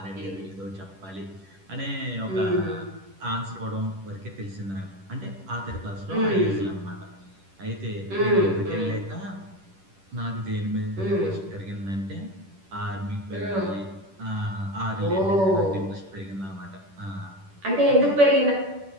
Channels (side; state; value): left; late; 10 ms